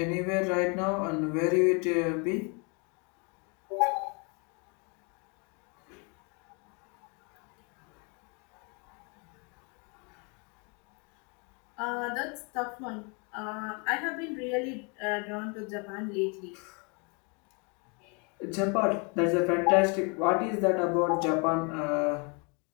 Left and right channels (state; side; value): quieter; right; 33.5 dB